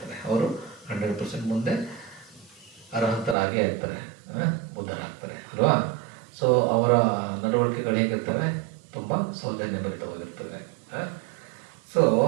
ಅವರು 100% ಮುಂದೆ ಅರ್ಹತರಾಗೇ ಇರ್ತಾರೆ, ಬುದ್ಧರಾಗ್ತಾರೆ ಅಲ್ವಾ. ಸೊ ಅವರ ನಡವಳಿಕೆಗಳು ಹೇಗಿರ್ತವೆ? ತುಂಬ ಸೌಜನ್ಯಭರಿತವಾಗಿರ್ತವೆ. ಸೊ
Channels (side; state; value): left; drops out; at 3.4 s